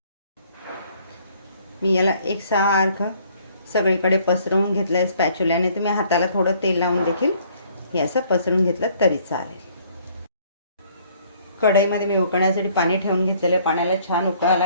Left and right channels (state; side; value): inverted; both; correlation -0.61